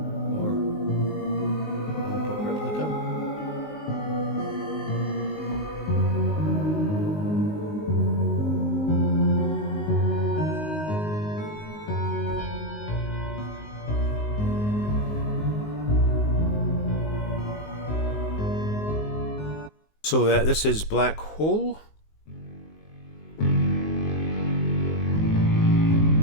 So this is Black Hole.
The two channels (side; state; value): right; late; 19 ms